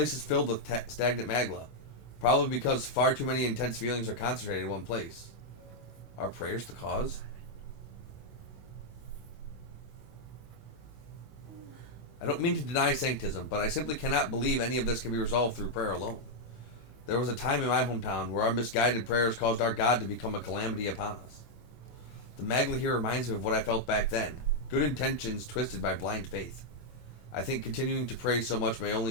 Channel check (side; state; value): right; late; 25 ms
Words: is filled with stagnant magla. Probably because far too many intense feelings are concentrated in one place. Are prayers the cause? I don't mean to deny sanctism, but I simply cannot believe any of this can be resolved through prayer alone. There was a time in my hometown where our misguided prayers caused our God to become a calamity upon us. The Magla here reminds me of what I felt back then. Good intentions twisted by blind faith. I think continuing to pray so much may